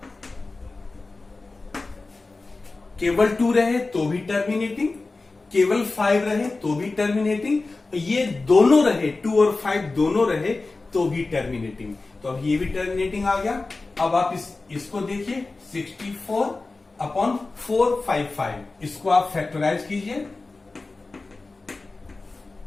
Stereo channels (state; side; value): quieter; right; 3.5 dB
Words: केवल 2 रहे तो भी टर्मिनेटिंग, केवल 5 रहे तो भी टर्मिनेटिंग, ये दोनों रहे 2 और 5 दोनों रहे तो भी टर्मिनेटिंग. तो अब ये भी टर्मिनेटिंग आ गया. अब आप इसको देखिए 64/455, इसको आप फैक्टराइज कीजिए.